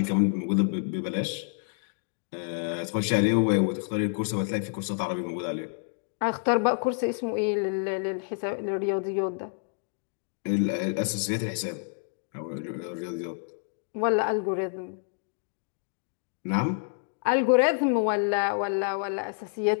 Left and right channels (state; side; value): silent; right; digital silence